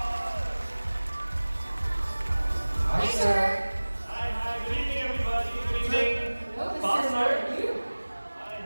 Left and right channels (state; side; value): inverted; both; correlation -1.00